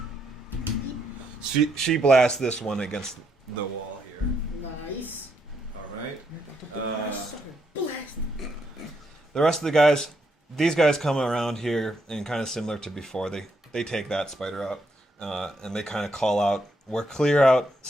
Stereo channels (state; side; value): normal; both; correlation 0.77